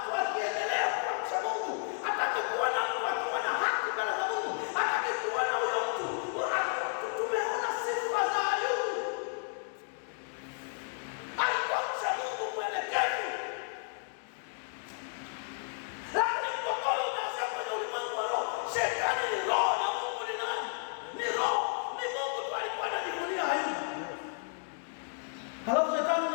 akiendelea kwa mcha Mungu. Hataki kuona mtu akiwa na haki mbele za Mungu. Hataki kuona huyo mtu. Tumeona sifa za Ayubu. Alikuwa mcha Mungu mwelekevu. Lakini mgogoro umeanzia kwenye ulimwengu wa roho. Shetani ni roho na Mungu ni nani? Ni roho. Ni Mungu tu alikuwa anajivunia Ayubu. Halafu shetani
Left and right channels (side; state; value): right; silent; digital silence